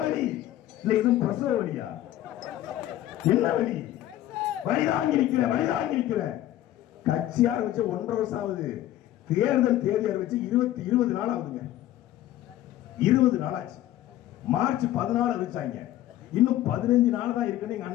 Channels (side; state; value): right; quieter; 13.6 dB